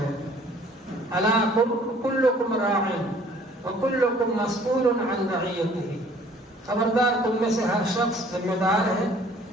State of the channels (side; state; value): both; normal; correlation 0.55